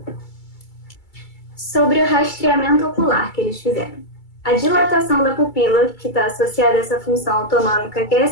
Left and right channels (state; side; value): late; right; 2.3 ms